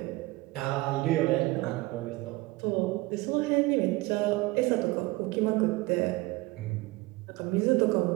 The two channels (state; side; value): quieter; left; 21.1 dB